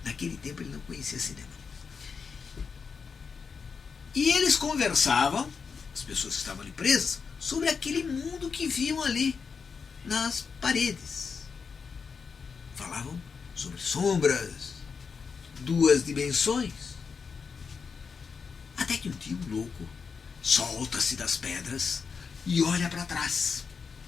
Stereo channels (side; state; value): right; quieter; 5.6 dB